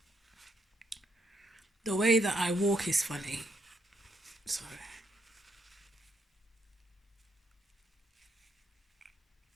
The way that I walk is funny. Sorry.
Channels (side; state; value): both; normal; correlation 0.77